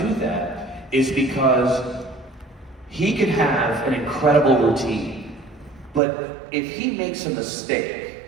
that is because he could have an incredible routine, but if he makes a mistake,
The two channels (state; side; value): drops out; left; at 6.0 s